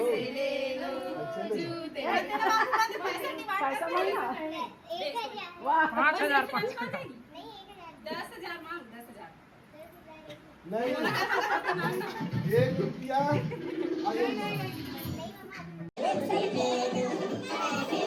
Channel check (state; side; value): identical; both; correlation 1.00